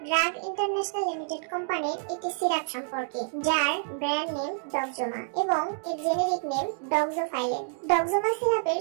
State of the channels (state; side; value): silent; left; digital silence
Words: drug international limited কোম্পানির একটি সিরাপ সম্পর্কে, যার ব্র্যান্ড নেম ডক্সোমা এবং এর জেনেরিক নেম ডক্সোফাইলিন। ডক্সোমা সিরাপের